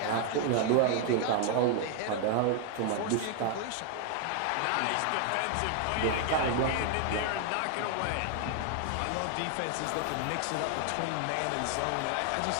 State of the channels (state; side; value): different; both; correlation 0.00